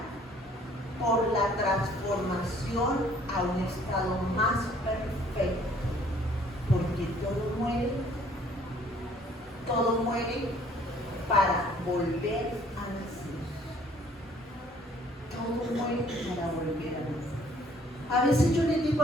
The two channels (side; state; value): both; normal; correlation 0.59